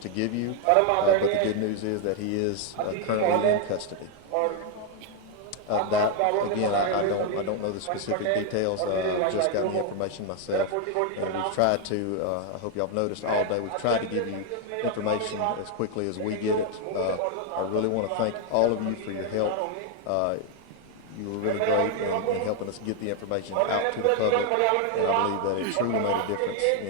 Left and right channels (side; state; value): both; different; correlation 0.01